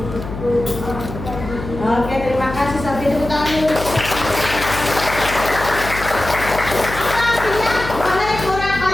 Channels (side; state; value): left; noise; hum, 9 dB below the sound